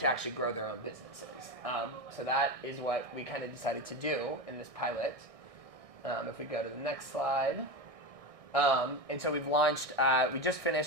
actually grow their own businesses. So that is what we kind of decided to do in this pilot. If we go to the next slide. And so we've launched, we just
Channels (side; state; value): left; late; 1.6 ms